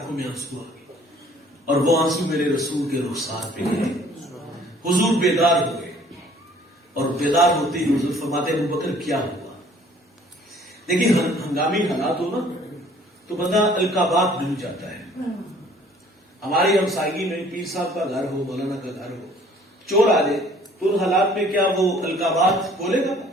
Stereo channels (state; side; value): normal; both; correlation 0.56